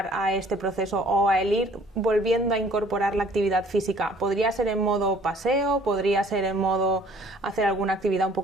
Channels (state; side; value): normal; both; correlation 0.55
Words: a este proceso o a el ir volviendo a incorporar la actividad física? ¿Podría ser en modo paseo? ¿Podría ser en modo hacer alguna actividad un